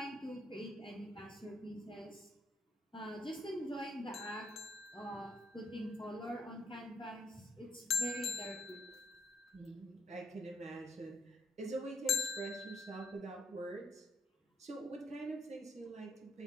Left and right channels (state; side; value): normal; both; correlation 0.72